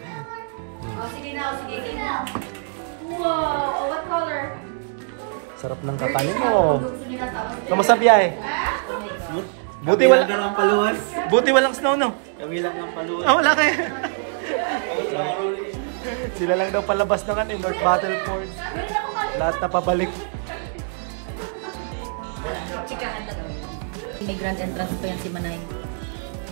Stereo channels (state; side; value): silent; left; digital silence